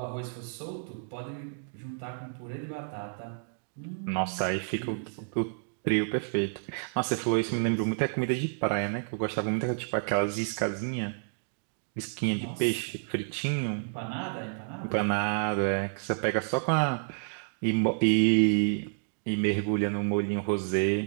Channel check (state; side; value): silent; left; digital silence